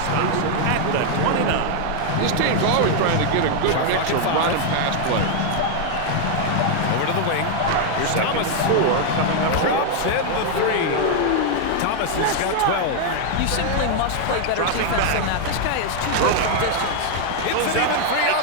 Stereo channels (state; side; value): different; both; correlation 0.00